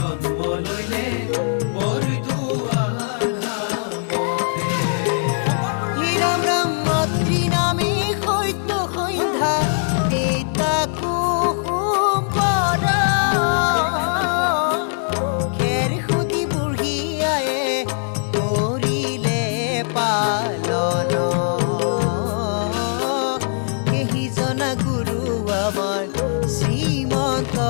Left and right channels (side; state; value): right; silent; digital silence